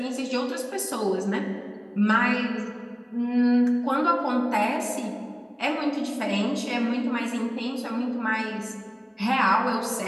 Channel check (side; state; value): both; identical; correlation 1.00